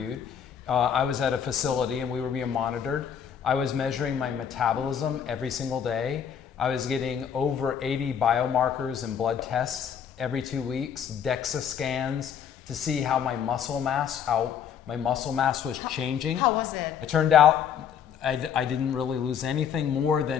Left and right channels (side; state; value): right; quieter; 8.1 dB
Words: I was at a facility and we were being monitored. I was measuring my metabolism every single day. I was getting over 80 biomarkers and blood tests every 2 weeks, DEXA scans to see how my muscle mass was changing. How was it? It turned out I didn't really lose anything more